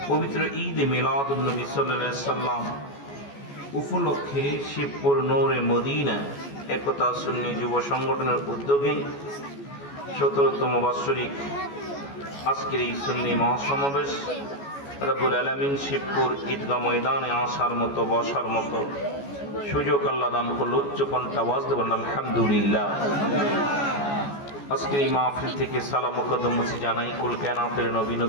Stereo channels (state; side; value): late; right; 14 ms